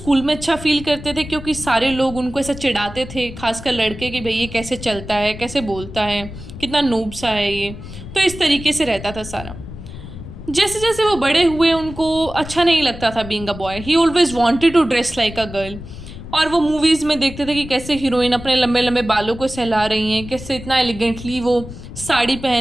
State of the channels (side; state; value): left; noise; rumble, 13 dB below the sound